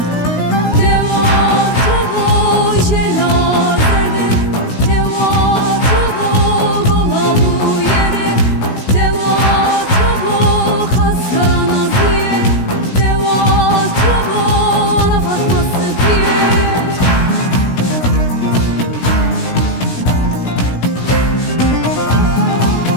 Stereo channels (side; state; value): right; late; 16 ms